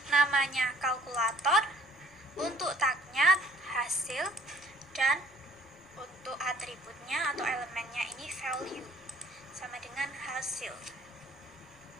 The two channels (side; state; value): left; noise; rumble, 28 dB below the sound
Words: namanya kalkulator, untuk tagnya hasil, dan untuk atributnya atau elemennya ini value, sama dengan hasil.